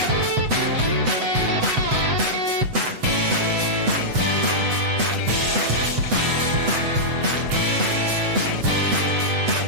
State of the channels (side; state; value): left; late; 7.9 ms